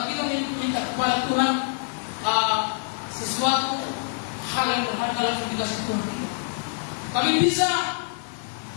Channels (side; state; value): right; silent; digital silence